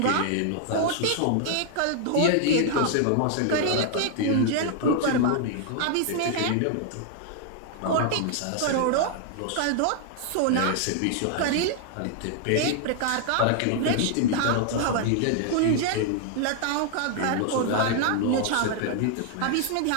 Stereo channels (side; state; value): both; different; correlation 0.00